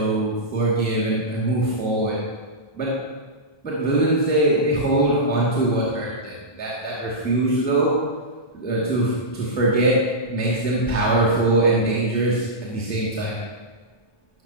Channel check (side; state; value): right; late; 1.2 ms